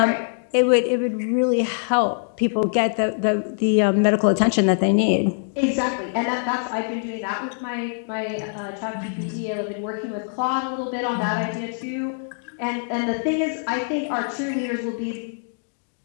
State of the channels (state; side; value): silent; right; digital silence